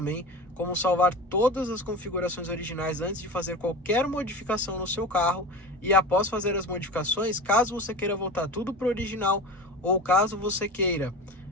como salvar todas as configurações originais antes de fazer qualquer modificação no seu carro, e após fazer as modificações, caso você queira voltar tudo para o original, ou caso você queira,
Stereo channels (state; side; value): normal; both; correlation 0.30